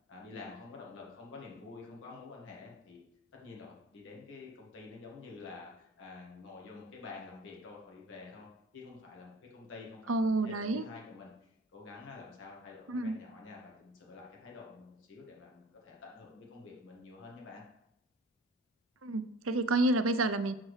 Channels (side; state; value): both; normal; correlation 0.44